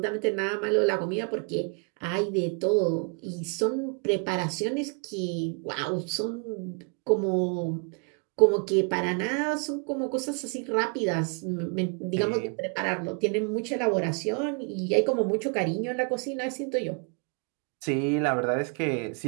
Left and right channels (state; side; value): quieter; left; 36.5 dB